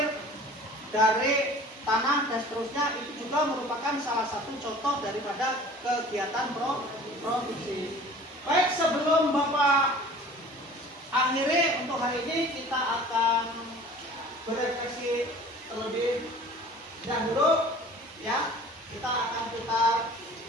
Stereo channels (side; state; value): both; normal; correlation 0.45